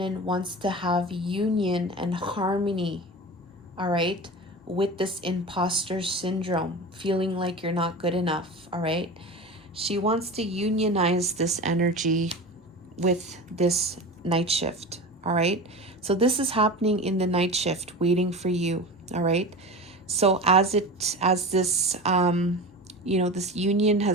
wants to have union and harmony, all right, with this imposter syndrome, feeling like you're not good enough, all right? She wants to unionize this energy with this night shift, all right? So this is happening in the night shift, waiting for you, all right? So as this this union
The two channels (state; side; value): normal; both; correlation 0.30